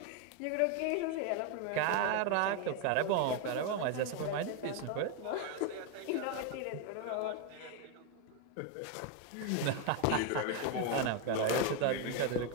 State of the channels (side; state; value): both; different; correlation 0.02